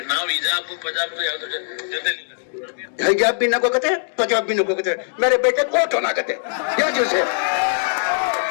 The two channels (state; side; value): silent; right; digital silence